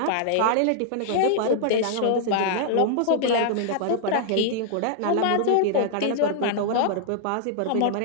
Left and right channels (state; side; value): different; both; correlation -0.01